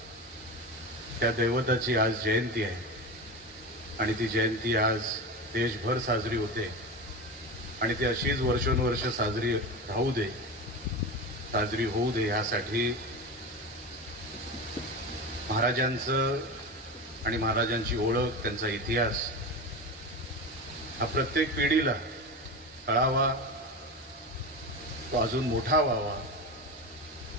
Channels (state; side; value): normal; both; correlation 0.24